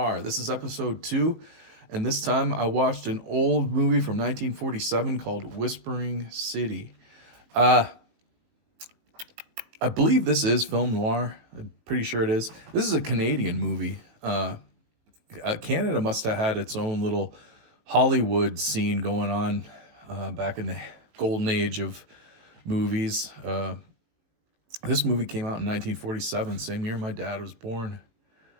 This is episode 2, and this time I watched an old movie from 1947 called Whispering City. Uh, I believe this is film noir. I'm pretty sure it is. This is a Canadian movie. Canada must have had its own little Hollywood scene going on back in the golden age of movies. This movie came out in 1947, same year my dad was born.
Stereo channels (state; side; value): late; left; 18 ms